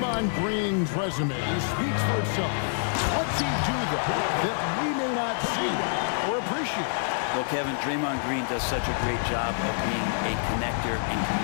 Green's resume speaks for itself. What's he do, though, that we may not see or appreciate? Well, Kevin, Draymond Green does such a great job of being a connector and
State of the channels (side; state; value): right; silent; digital silence